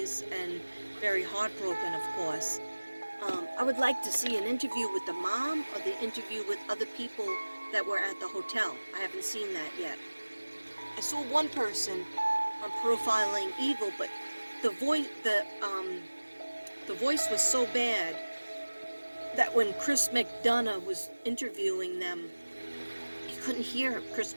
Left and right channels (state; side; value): inverted; both; correlation -1.00